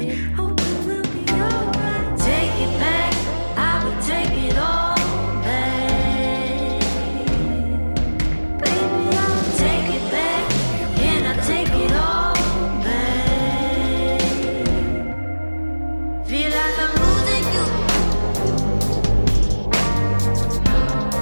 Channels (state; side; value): inverted; both; correlation -1.00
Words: Hope it will be alright. Take it back, I would take it all back. Baby, I'll take it back, and I take it all back. Feel like I'm losing you.